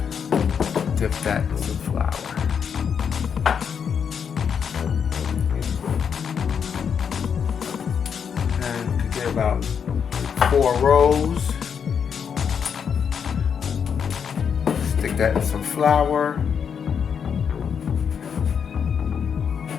Dip that in some flour. And you could get about 4 rolls. Stick that in some flour.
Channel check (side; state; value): right; quieter; 7.1 dB